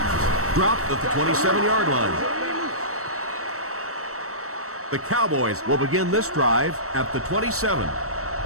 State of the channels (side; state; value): left; late; 0.64 ms